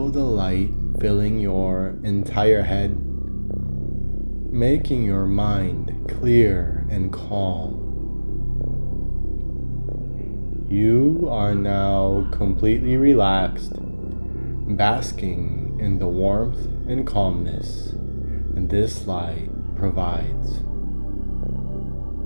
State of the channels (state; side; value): inverted; both; correlation -1.00